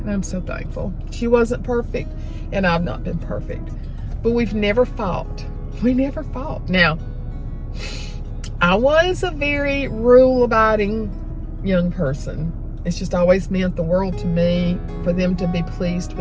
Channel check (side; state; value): both; identical; correlation 1.00